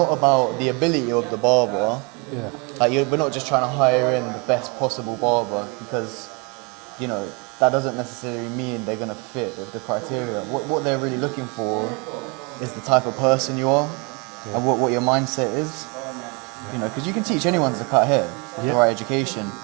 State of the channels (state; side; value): quieter; left; 31.3 dB